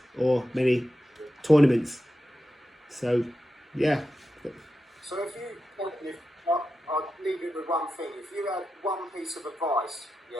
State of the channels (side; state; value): both; normal; correlation 0.90